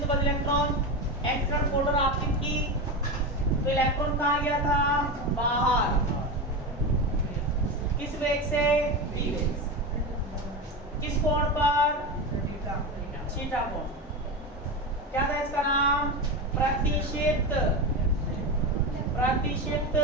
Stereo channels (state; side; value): normal; both; correlation 0.19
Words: बद्ध इलेक्ट्रॉन, एक्स किरण फोटोन आपतित की, तो इलेक्ट्रॉन कहाँ गया था, बाहर। किस वेग से, v वेग से। किस कोण पर, थीटा कोण। क्या था इसका नाम, प्रतिशित